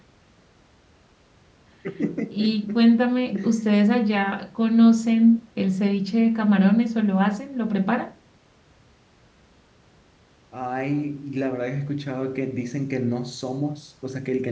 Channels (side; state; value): both; identical; correlation 1.00